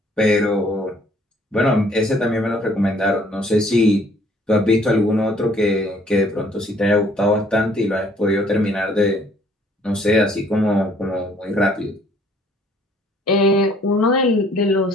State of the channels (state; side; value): normal; both; correlation 0.60